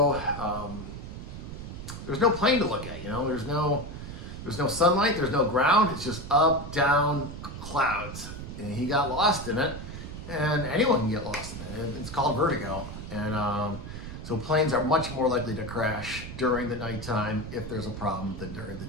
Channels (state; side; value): noise; right; rumble, 9 dB below the sound